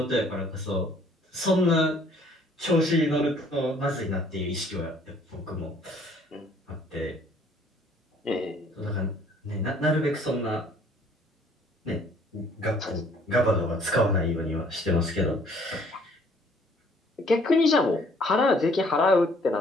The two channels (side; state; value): both; normal; correlation 0.59